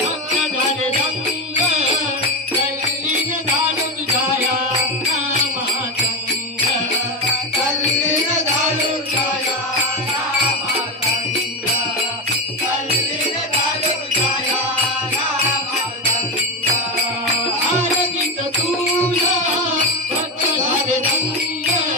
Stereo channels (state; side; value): normal; both; correlation 0.15